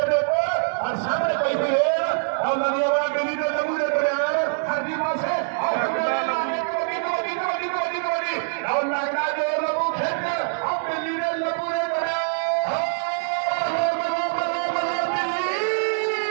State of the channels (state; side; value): silent; left; 58 dB below the other